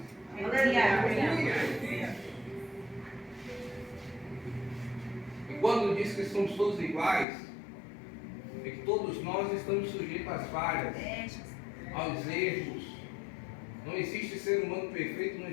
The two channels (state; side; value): drops out; right; at 7.2 s